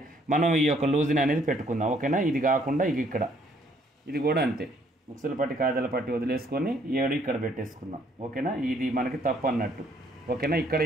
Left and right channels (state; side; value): normal; both; correlation 0.65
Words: మనం ఈ యొక్క లూజ్ని అనేది పెట్టుకుందాం. ఓకేనా, ఇది కాకుండా ఇది కూడా అంతే. ఉక్సుల పట్టి కాజల పట్టి వదిలేసుకొని 7 ఇక్కడ పెట్టేసుకుందాం. ఓకేనా, ఇది మనకి తప్పు అన్నట్టు. ఓకేనా, ఇక్కడ